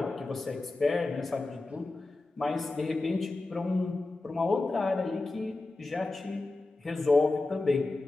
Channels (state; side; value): quieter; right; 3.1 dB